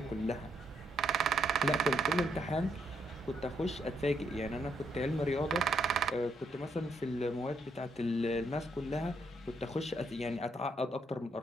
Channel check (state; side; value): normal; both; correlation 0.75